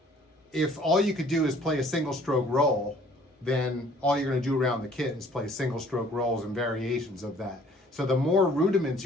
if all you could do is play a single stroke roll, then all you're going to do around the kit is play single stroke rolls and variations of that. So the more rudiments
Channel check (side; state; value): both; normal; correlation 0.56